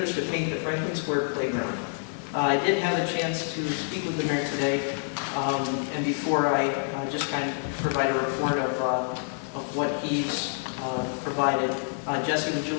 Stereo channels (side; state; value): right; silent; 60 dB below the other